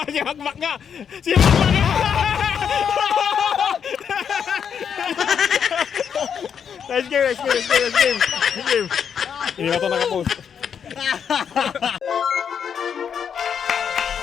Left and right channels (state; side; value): quieter; right; 7.5 dB